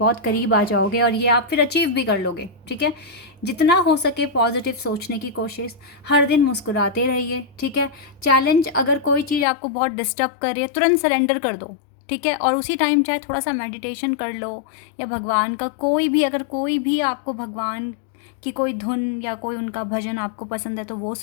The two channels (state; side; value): drops out; right; at 9.5 s